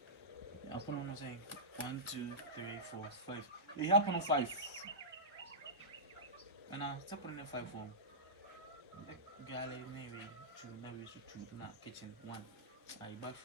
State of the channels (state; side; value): normal; both; correlation -0.15